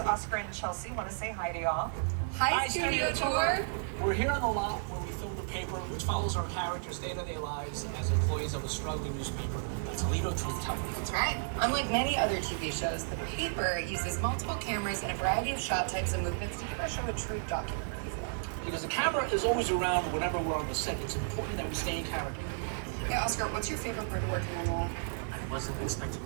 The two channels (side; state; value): left; silent; digital silence